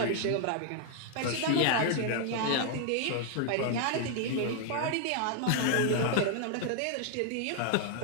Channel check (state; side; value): different; both; correlation 0.00